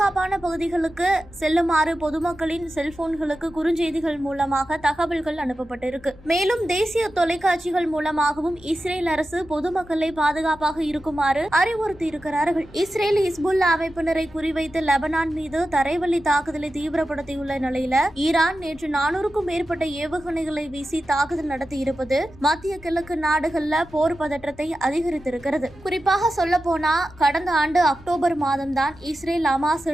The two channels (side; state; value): both; normal; correlation 0.92